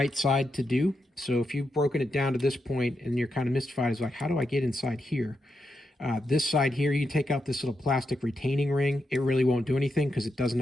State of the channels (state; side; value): normal; both; correlation 0.85